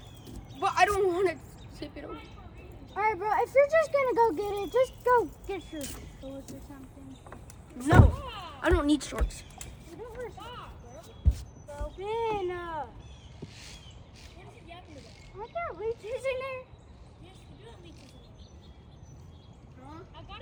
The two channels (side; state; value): both; identical; correlation 1.00